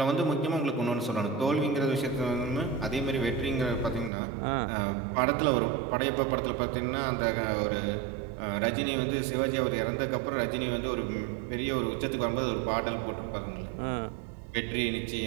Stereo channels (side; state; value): left; drops out; at 4.1 s